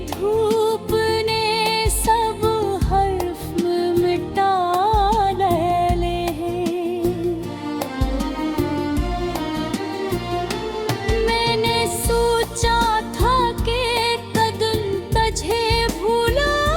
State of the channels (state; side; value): identical; both; correlation 1.00